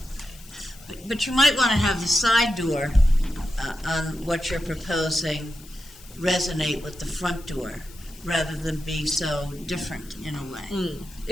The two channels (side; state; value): left; noise; hiss, 21 dB below the sound